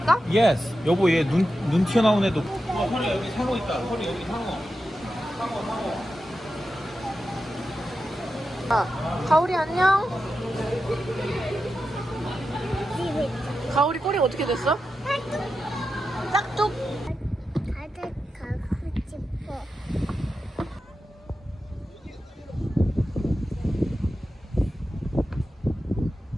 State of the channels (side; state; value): both; normal; correlation 0.90